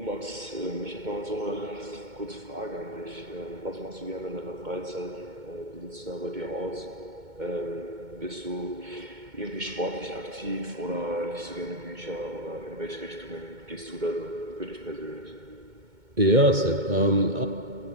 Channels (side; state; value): left; late; 2.2 ms